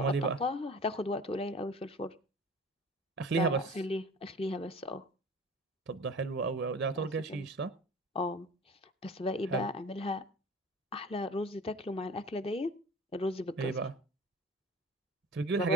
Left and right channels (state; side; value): normal; both; correlation 0.40